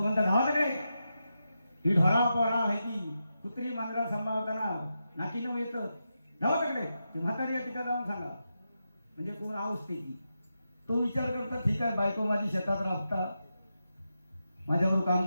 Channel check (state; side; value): inverted; both; correlation -0.88